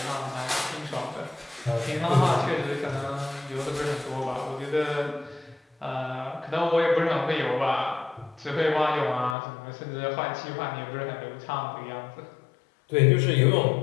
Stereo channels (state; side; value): drops out; right; at 9.3 s